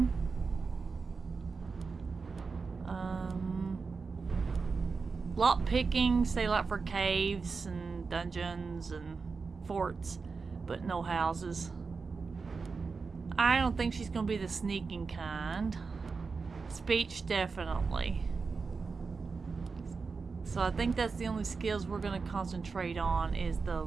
Lock picking, say like for caves and dungeons and forts, but no houses. I don't think she's gonna be the sneaking kind. Speech, definitely. So I think that's the only skills we're gonna concentrate on is the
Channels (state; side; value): quieter; left; 4.7 dB